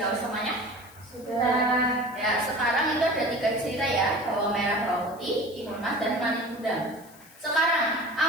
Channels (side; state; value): left; noise; hiss, 23 dB below the sound